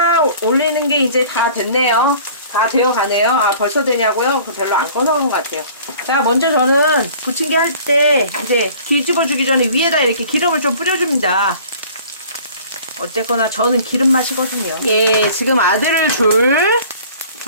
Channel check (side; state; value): both; inverted; correlation -0.48